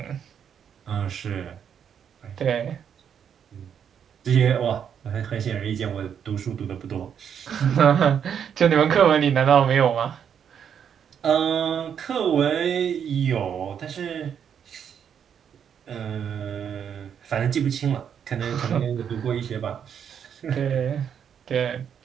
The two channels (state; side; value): quieter; left; 8.1 dB